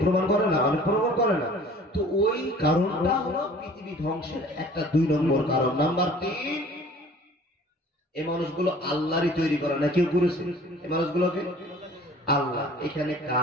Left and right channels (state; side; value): normal; both; correlation 0.49